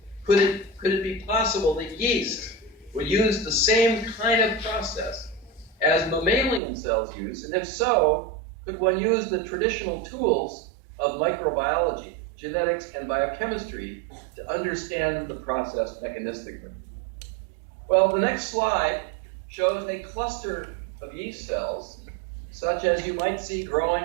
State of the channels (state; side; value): drops out; left; at 6.6 s